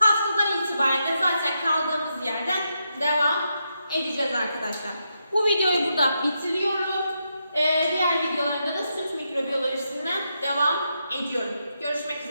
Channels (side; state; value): both; inverted; correlation -0.83